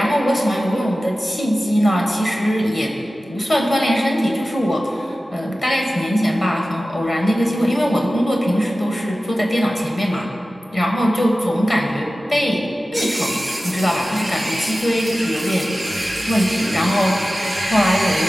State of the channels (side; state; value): both; normal; correlation 0.95